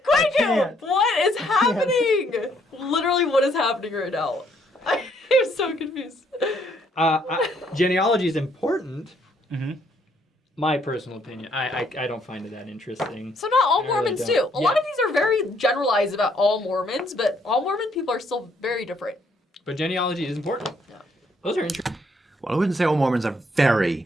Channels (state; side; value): normal; both; correlation 0.69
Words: can't. What is happening? Literally, what is happening right now? I'm so confused. Genealogy is important. Mm-hmm. My personal opinion. I don't find it that interesting. So not all I really Mormons don't. do. A lot of these are very generalized about all Mormons, but all Mormon people are still very different. But genealogy is important. Yeah. Those are interesting. Well, I wouldn't say all Mormons are very